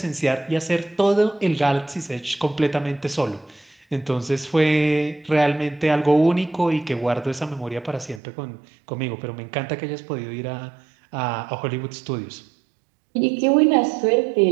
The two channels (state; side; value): drops out; left; at 8.2 s